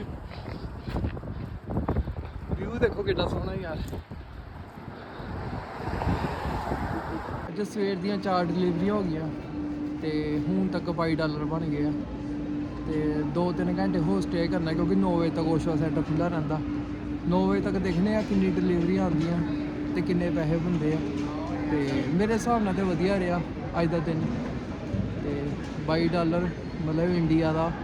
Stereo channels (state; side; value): identical; both; correlation 1.00